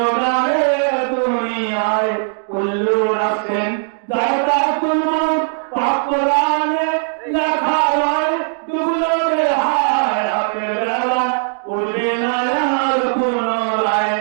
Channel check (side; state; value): left; silent; digital silence